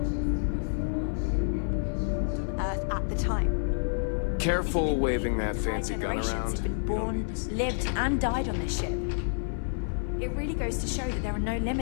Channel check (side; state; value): right; silent; digital silence